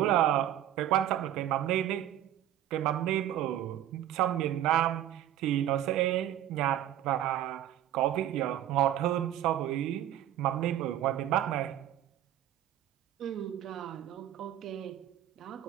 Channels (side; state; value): left; quieter; 12.0 dB